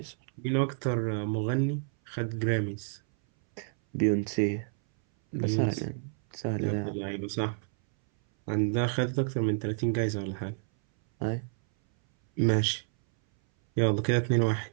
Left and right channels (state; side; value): silent; left; 58 dB below the other